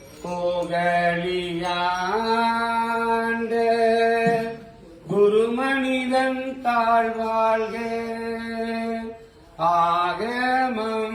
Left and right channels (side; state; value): both; identical; correlation 1.00